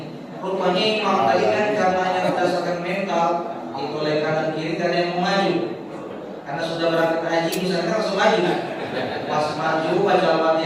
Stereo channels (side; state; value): both; identical; correlation 1.00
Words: Rupanya imam tadi kan karena hanya berdasarkan mental, itu oleh kanan kiri tidak ada yang mau maju. Karena sudah berangkat haji misalnya langsung maju. Pas maju baca